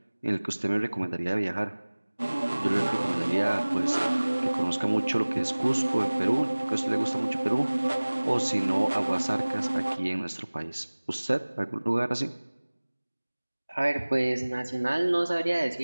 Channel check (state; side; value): inverted; both; correlation -1.00